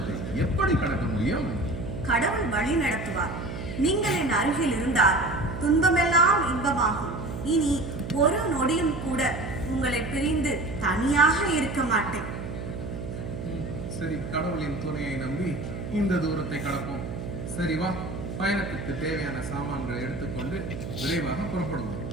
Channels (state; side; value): noise; right; hum, 7 dB below the sound